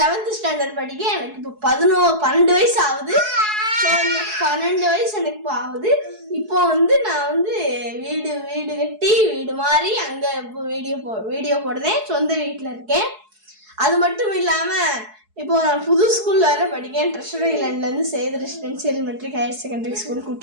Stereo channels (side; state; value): left; late; 4.7 ms